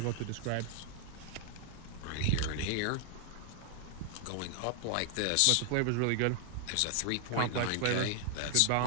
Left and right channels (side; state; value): both; different; correlation 0.00